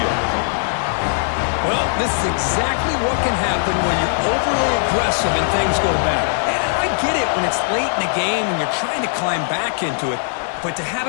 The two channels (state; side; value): silent; right; digital silence